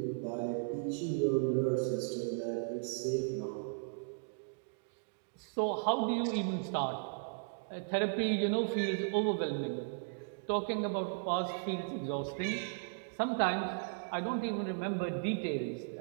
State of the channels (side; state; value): left; silent; digital silence